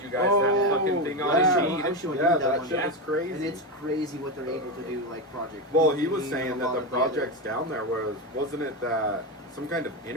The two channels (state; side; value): normal; both; correlation 0.14